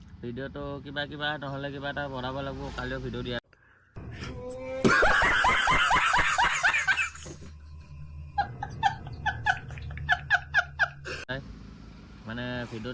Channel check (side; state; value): both; identical; correlation 1.00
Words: ভিডিঅ'টো কিবা নহ'লে কিবা এটা বনাব লাগিব, কালিও ভিডিঅ' দিয়া। মানে